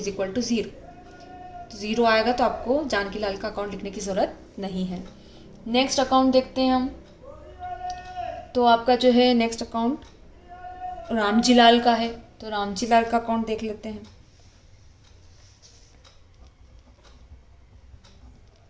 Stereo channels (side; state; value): both; identical; correlation 1.00